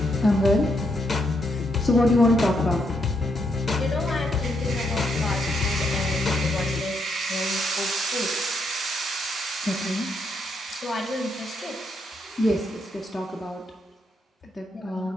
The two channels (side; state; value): both; normal; correlation 0.78